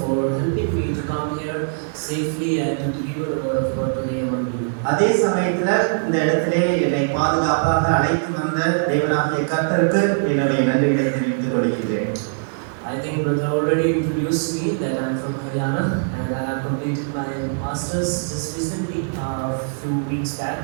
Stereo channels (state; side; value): silent; left; digital silence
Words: for helping me to come here safely and to deliver the word of God today among you. அதே சமயத்துல இந்த இடத்திலே என்னை பாதுகாப்பாக அழைத்து வந்த தேவனாகிய கர்த்தருக்கு என்னுடைய நன்றிகளை தெரிவித்துக் கொள்கின்றேன். I think Brother already introduced me that I'm from Haryana and I have completed my masters just recently, a few weeks back.